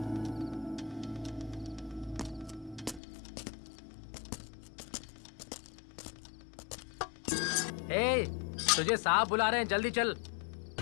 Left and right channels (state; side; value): drops out; right; at 3.0 s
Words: ए, तुझे साहब बुला रहे हैं, जल्दी चल।